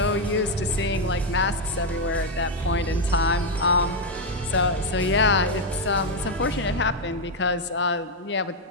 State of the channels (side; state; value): both; normal; correlation 0.03